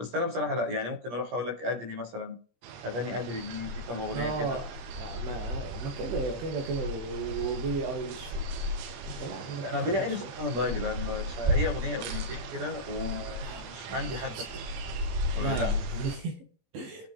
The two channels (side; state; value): left; late; 17 ms